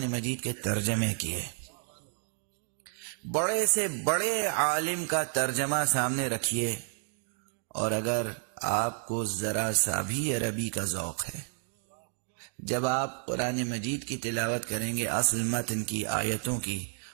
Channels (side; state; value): left; silent; 57 dB below the other